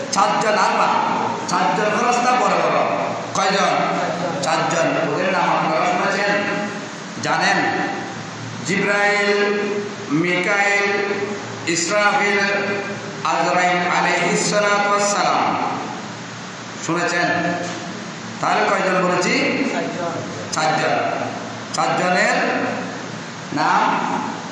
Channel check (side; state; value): both; identical; correlation 1.00